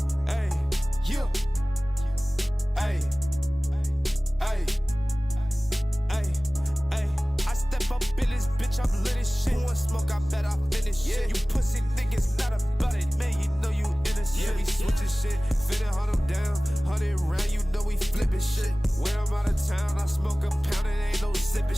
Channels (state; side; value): normal; both; correlation 0.98